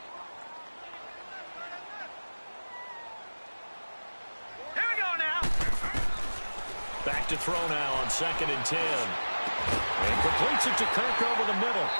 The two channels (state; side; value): inverted; both; correlation -1.00